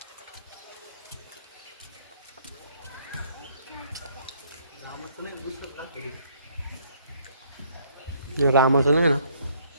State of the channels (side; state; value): both; inverted; correlation -0.64